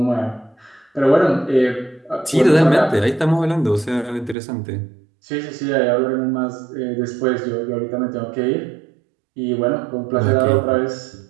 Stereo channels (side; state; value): left; drops out; at 4.4 s